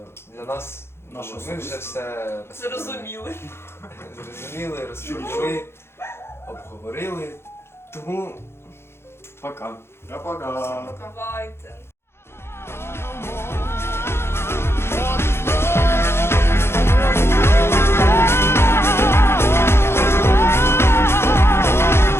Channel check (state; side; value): late; right; 0.12 ms